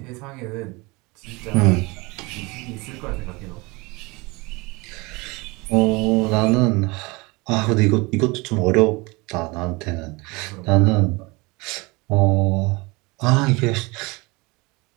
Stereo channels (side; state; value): left; quieter; 25.3 dB